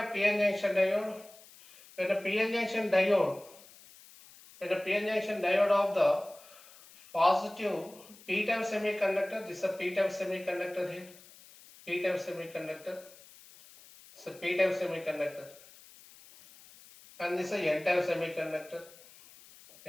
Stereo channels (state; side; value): noise; left; hiss, 22 dB below the sound